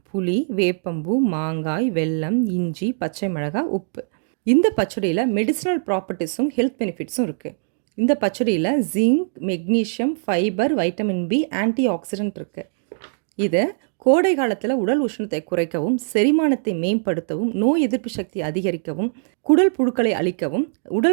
புளி, வேப்பம்பூ, மாங்காய், வெல்லம், இஞ்சி, பச்சை மிளகாய், உப்பு. இந்த பச்சடியில் மெடிசினல் ப்ராப்பர்ட்டிஸும் ஹெல்த் பெனிஃபிட்ஸும் இருக்குது. இந்த பச்சடியில் zinc, magnesium, fibre, vitamin B, antioxidant இருக்குது. இதை கோடை காலத்தில் உடல் உஷ்ணத்தை குறைக்கவும், செரிமானத்தை மேம்படுத்தவும், நோய் எதிர்ப்பு சக்தி அதிகரிக்கவும், குடல் புழுக்களை அழிக்கவும்,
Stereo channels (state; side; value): silent; left; digital silence